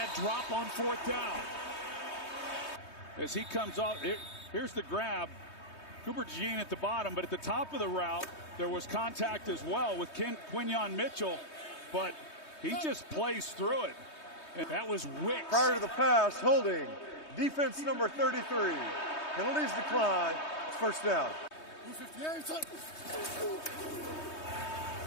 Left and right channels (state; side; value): late; right; 3.2 ms